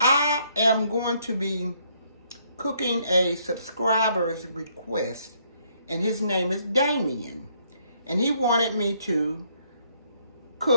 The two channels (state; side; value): inverted; both; correlation -0.70